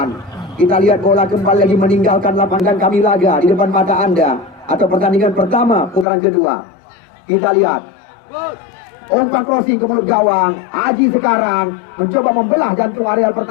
Kita lihat bola kembali lagi meninggalkan lapangan kami laga di depan mata Anda, atau pertandingan pertama putaran kedua. Kita lihat umpan crossing ke mulut gawang. Haji sekarang mencoba membelah jantung areal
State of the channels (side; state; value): right; drops out; at 6.1 s